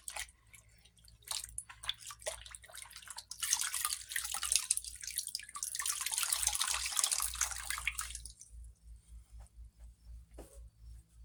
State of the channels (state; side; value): identical; both; correlation 1.00